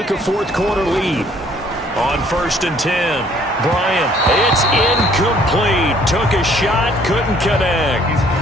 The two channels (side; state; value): both; normal; correlation 0.60